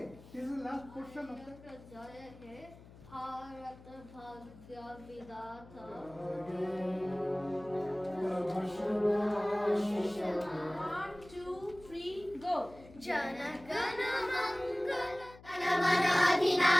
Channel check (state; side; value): noise; left; hum, 20 dB below the sound